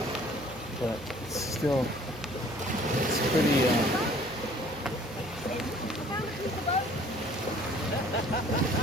But it's still, it's pretty,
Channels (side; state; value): both; normal; correlation 0.54